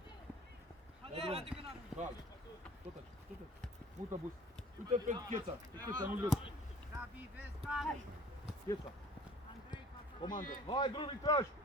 Calm! Tot așa, tot așa! Mută, Bus! Uite pe Cheța! Pe Cheța, nu-l vezi! Gabi, vezi, Gabi! Cheța! Andrei, Comandă! Hai, drumii trași!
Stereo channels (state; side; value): normal; both; correlation 0.49